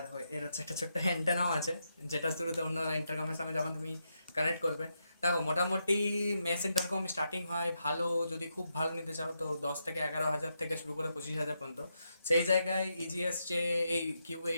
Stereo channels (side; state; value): both; inverted; correlation -0.83